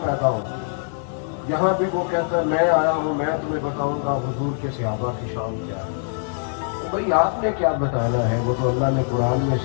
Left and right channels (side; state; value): right; silent; digital silence